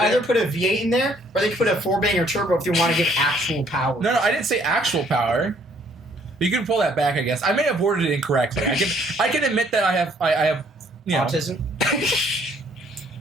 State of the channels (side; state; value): both; normal; correlation 0.63